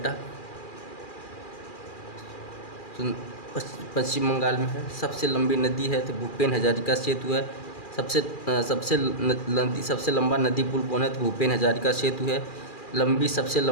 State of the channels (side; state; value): right; late; 2.4 ms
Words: पश्चिम बंगाल में है। सबसे लंबी नदी है तो भूपेन हजारिका सेतु है। सबसे लंबा नदी पुल कौन है? तो भूपेन हजारिका सेतु है। सबसे